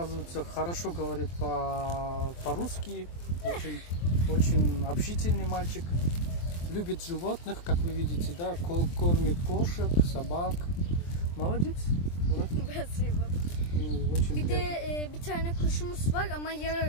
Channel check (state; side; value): late; right; 23 ms